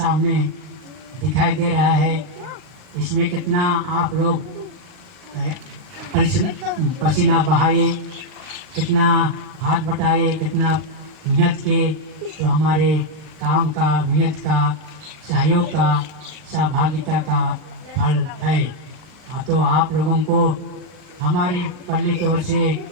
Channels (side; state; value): left; late; 39 ms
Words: दिखाई दे रहा है। इसमें कितना आप लोग पसीना बहाए, कितना हाथ बटाए, कितना मेहनत के, तो हमारे काम का, मेहनत का, सहयोग का, सहभागिता का फल है। तो आप लोगों को हमारी पल्ली की ओर से